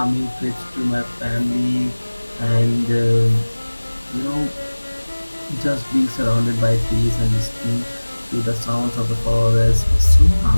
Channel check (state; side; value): inverted; both; correlation -1.00